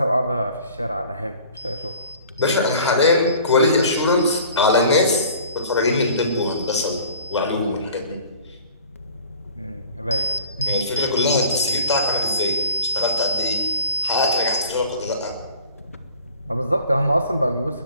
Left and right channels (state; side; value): inverted; both; correlation -0.48